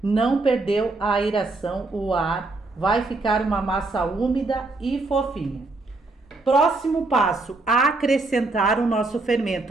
Não perdeu a aeração, o ar, vai ficar uma massa úmida e fofinha. Próximo passo, acrescentar o nosso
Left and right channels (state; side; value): quieter; left; 3.3 dB